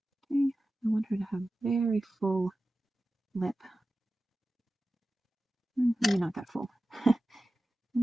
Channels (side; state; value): both; normal; correlation 0.94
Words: Okay, I want her to have very full lip. Maybe not that full.